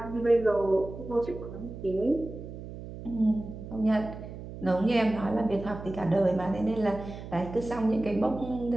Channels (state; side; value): noise; right; hum, 11 dB below the sound